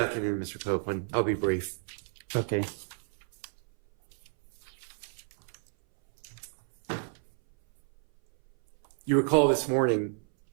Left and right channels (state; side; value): silent; left; 58 dB below the other